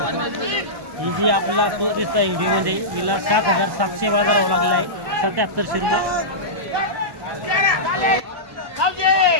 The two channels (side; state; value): left; late; 1.1 ms